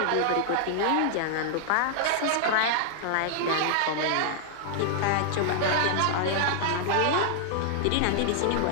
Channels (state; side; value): different; both; correlation 0.00